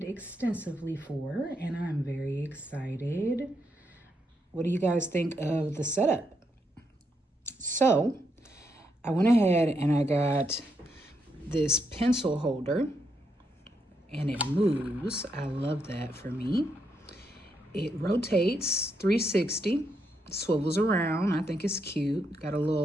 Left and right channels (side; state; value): both; normal; correlation 0.80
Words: extensively for. And I'm very excited. What do you guys think of the setup? So I went ahead and I got this pencil holder and it moves. I love that for me. It rotates 360, swivels around. I think it's cute. Got a